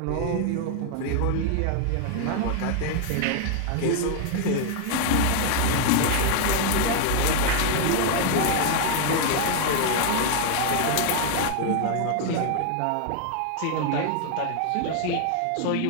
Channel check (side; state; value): both; different; correlation 0.00